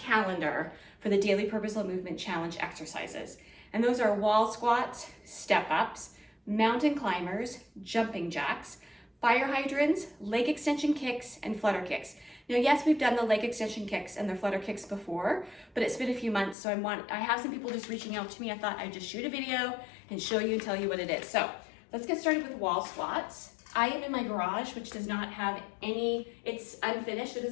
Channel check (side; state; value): right; drops out; at 16.6 s